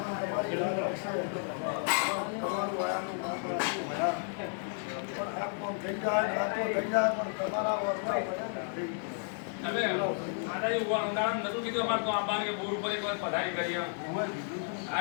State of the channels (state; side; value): silent; right; 56 dB below the other